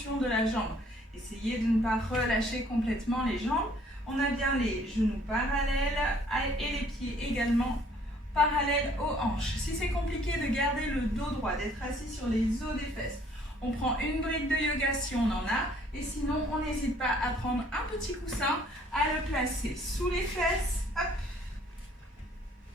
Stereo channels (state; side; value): normal; both; correlation 0.60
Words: de la jambe. Essayez de ne pas relâcher complètement les jambes. On a bien les genoux parallèles et les pieds également parallèles aux hanches. Si c'est compliqué de garder le dos droit, d'être assis sur les os des fesses, on prend une brique de yoga si on en a. Et sinon, on n'hésite pas à prendre un petit coussin, à le placer sous les fesses. Hop.